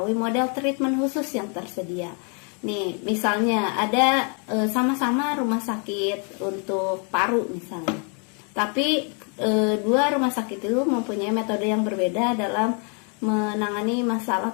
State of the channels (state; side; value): quieter; right; 38.6 dB